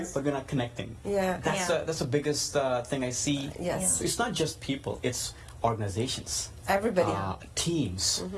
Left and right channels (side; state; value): both; identical; correlation 1.00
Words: but we're not connecting. Yeah. That's the biggest thing I see. Yes. So it's not just people; it's organizations, Everybody. teams,